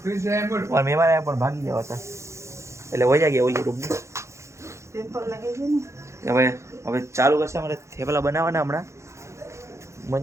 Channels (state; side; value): late; left; 0.14 ms